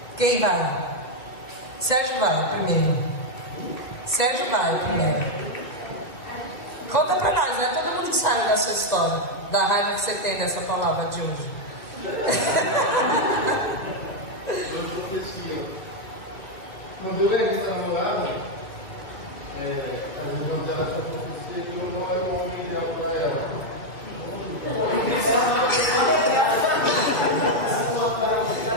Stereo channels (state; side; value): late; right; 2.3 ms